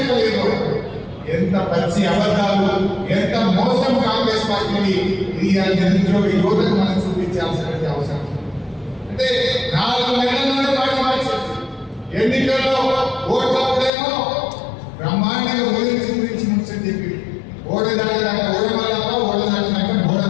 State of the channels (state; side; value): drops out; right; at 13.9 s